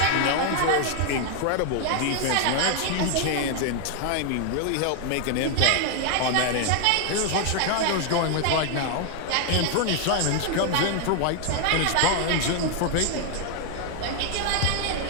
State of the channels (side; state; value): both; different; correlation 0.00